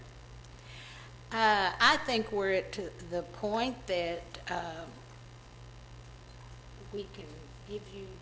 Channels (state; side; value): identical; both; correlation 1.00